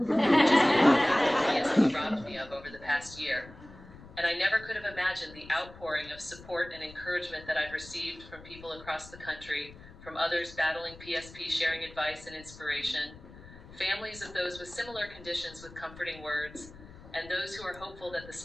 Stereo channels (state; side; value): noise; left; rumble, 19 dB below the sound